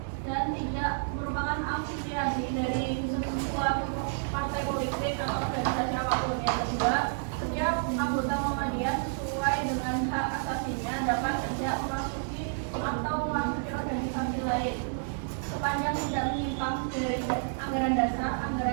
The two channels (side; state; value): left; silent; digital silence